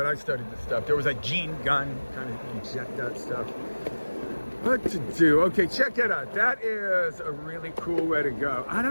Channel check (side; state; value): both; inverted; correlation -1.00